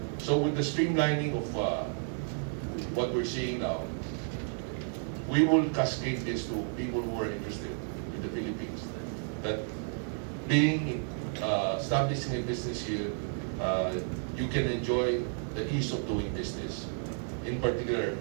So with the streamlining of what we're seeing now, we will cascade this to people who are interested in the Philippines. That being establishing a business here, you can enjoy the ease of doing business, in particular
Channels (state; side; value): silent; left; 57 dB below the other